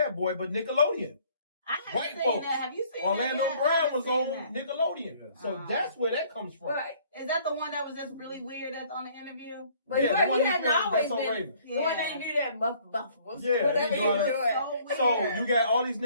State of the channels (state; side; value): inverted; both; correlation -0.59